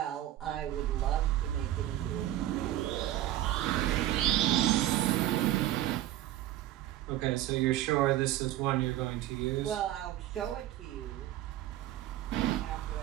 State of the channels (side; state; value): left; quieter; 13.8 dB